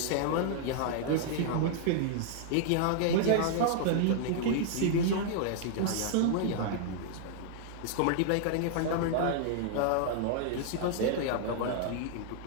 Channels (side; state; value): both; different; correlation -0.01